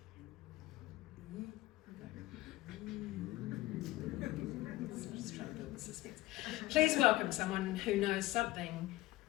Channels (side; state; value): right; quieter; 18.0 dB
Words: Just trying to build the suspense. Please welcome someone who knows something,